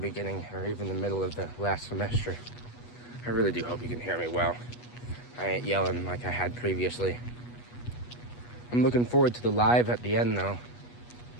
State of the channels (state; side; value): late; right; 8.2 ms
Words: or even the middle of the last semester. I really do hope you can hear me well. I ain't yelling like I had previously. I'm looking forward to the live at the end though.